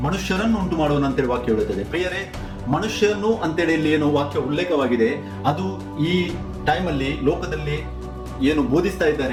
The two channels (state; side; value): identical; both; correlation 1.00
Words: ಮನುಷ್ಯರನ್ನು ಉಂಟು ಮಾಡುವನು ಅಂತೇಳಿ ವಾಕ್ಯ ಹೇಳುತ್ತದೆ. ಪ್ರಿಯರೇ, ಮನುಷ್ಯನು ಅಂತೇಳಿ ಇಲ್ಲಿ ಏನು ವಾಕ್ಯ ಉಲ್ಲೇಖವಾಗಿದೆ, ಅದು ಈ ಟೈಮಲ್ಲಿ ಲೋಕದಲ್ಲಿ ಏನು ಬೋಧಿಸ್ತಾ